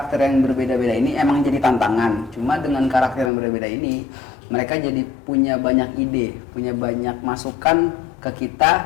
yang berbeda-beda ini emang jadi tantangan, cuma dengan karakter yang berbeda ini mereka jadi punya banyak ide, punya banyak masukan ke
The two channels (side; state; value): right; drops out; at 3.3 s